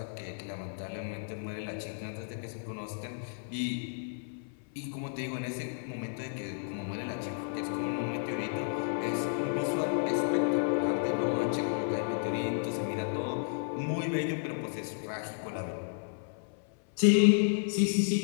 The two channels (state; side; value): silent; right; 56 dB below the other